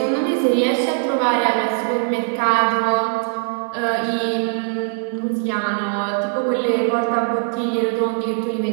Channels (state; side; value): silent; left; digital silence